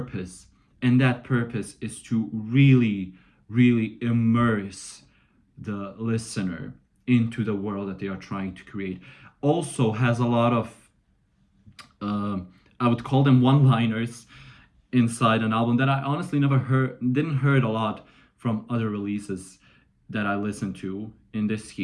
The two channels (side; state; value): both; identical; correlation 1.00